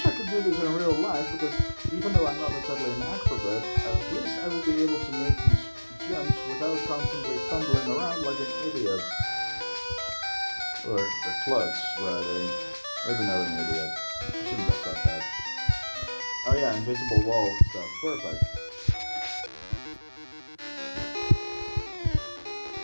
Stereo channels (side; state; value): both; inverted; correlation -1.00